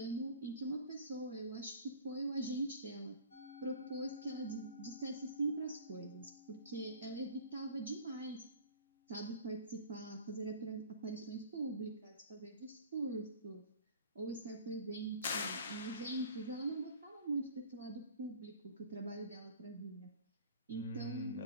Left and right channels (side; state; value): both; inverted; correlation -0.42